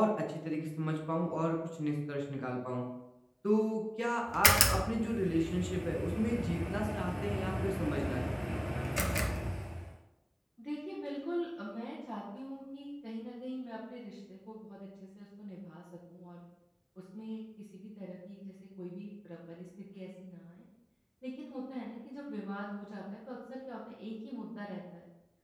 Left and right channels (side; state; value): both; identical; correlation 1.00